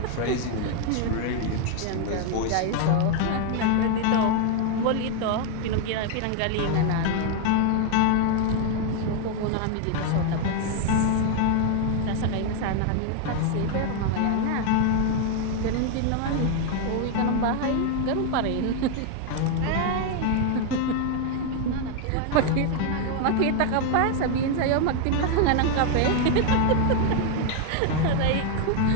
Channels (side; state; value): both; different; correlation 0.00